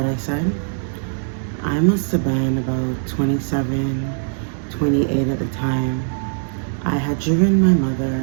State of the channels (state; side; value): silent; left; 65 dB below the other